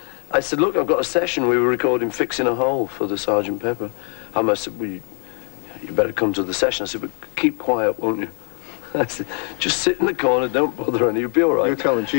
I said, "Look, I've got a session. We were recording Fixing a Hole for the Sgt. Pepper." I said, "Well, you better come to the session." I said, "But keep quiet, won't you?" I said, "Just sit in the corner, don't bother any, you'll be all right." You're telling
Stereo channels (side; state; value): right; quieter; 35.8 dB